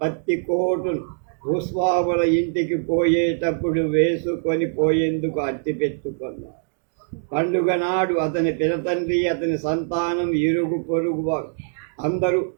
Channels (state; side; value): silent; left; digital silence